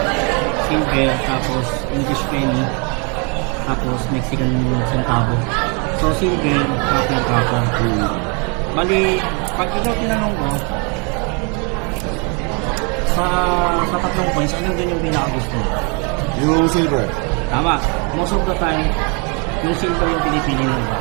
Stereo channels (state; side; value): quieter; left; 34.1 dB